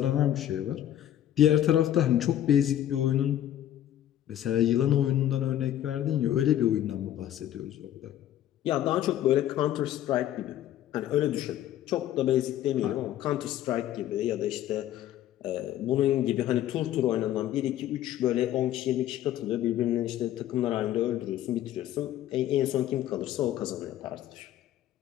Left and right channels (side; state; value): right; quieter; 12.0 dB